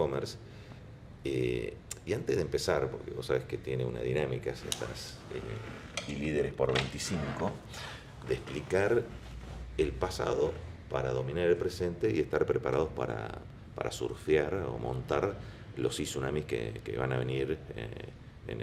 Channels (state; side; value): identical; both; correlation 1.00